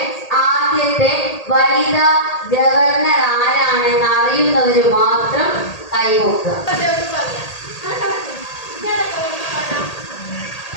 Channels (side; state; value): right; late; 1.8 ms